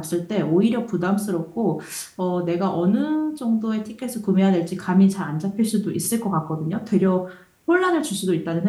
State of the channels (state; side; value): identical; both; correlation 1.00